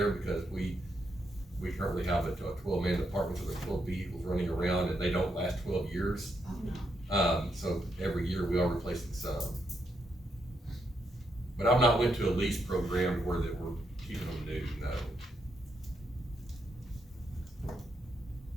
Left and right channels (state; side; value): normal; both; correlation 0.80